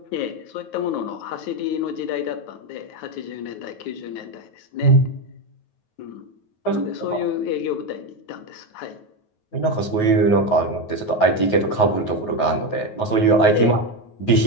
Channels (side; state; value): right; late; 9.4 ms